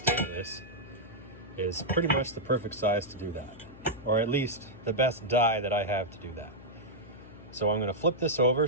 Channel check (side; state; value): left; noise; hum, 18 dB below the sound